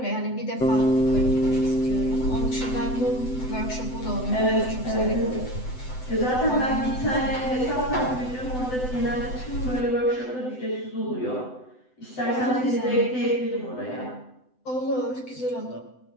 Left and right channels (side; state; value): right; late; 7.9 ms